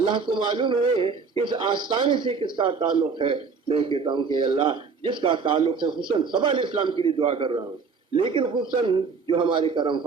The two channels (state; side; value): quieter; left; 5.1 dB